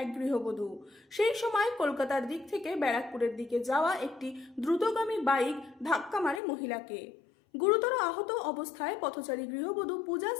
এক গৃহবধূ। সেই সময় কলকাতার দিক থেকে ব্যারাকপুরের দিকে যাওয়া একটি দ্রুতগামী বাইক ধাক্কা মারে মহিলাকে। গুরুতর আহত অবস্থায় পথচারী গৃহবধূ পূজা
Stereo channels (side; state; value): right; drops out; at 6.4 s